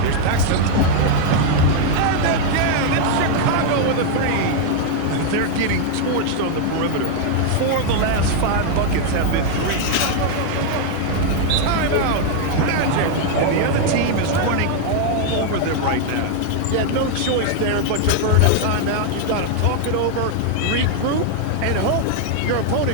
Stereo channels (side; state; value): both; different; correlation 0.00